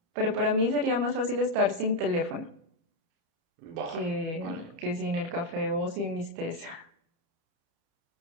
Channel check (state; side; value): late; left; 31 ms